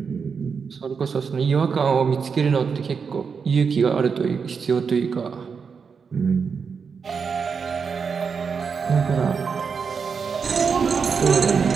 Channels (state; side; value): quieter; left; 5.8 dB